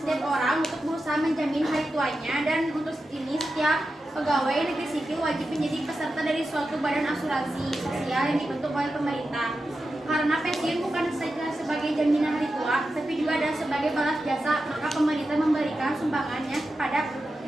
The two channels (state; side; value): normal; both; correlation 0.91